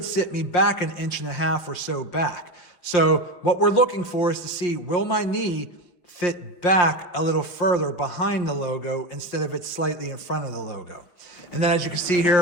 sit me back 1.5 inches or so back. So what we're looking for is to see, will my knee fit back a little further behind the logo instead of it slightly in front of the logo. And then as you can see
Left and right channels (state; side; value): late; right; 5.6 ms